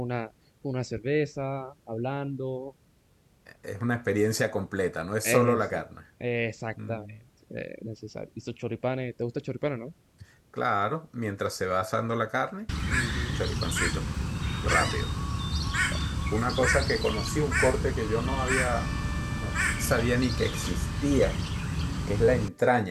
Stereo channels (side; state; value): both; identical; correlation 1.00